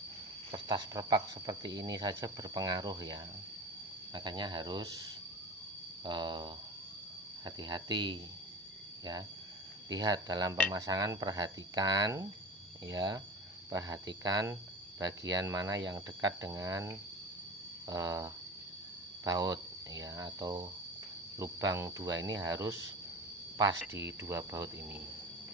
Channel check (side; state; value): both; normal; correlation 0.33